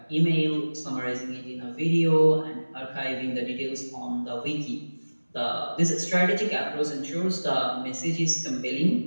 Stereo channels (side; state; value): both; inverted; correlation -1.00